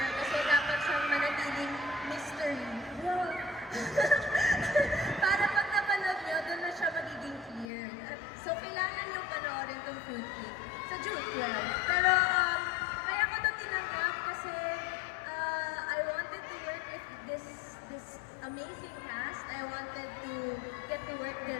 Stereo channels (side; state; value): right; drops out; at 7.7 s